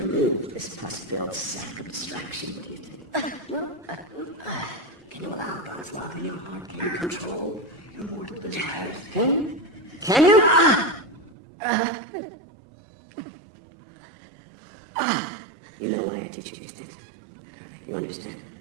this pus-filled sack of distraction. What do you think? Can you allow God's love in your heart? Can you control your mortal desires? Can you? You know why I teach you these things. You understand?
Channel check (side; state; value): left; drops out; at 11.4 s